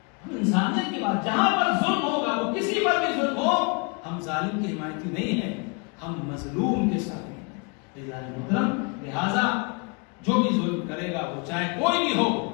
ہم انسانیت کی بات, جہاں پر ظلم ہوگا وہ کسی پر بھی ظلم ہو ہم ظالم کے حمایتی نہیں ہیں, ہم مظلوم کے ساتھ ہیں. محترم لہذا جو بھی ظلم کرے گا وہ چاہے کوئی بھی ہو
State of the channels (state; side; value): quieter; right; 33.5 dB